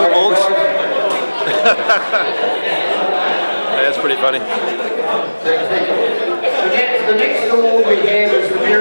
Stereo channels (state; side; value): inverted; both; correlation -1.00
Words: Morgs. That's pretty funny. The next award we have is the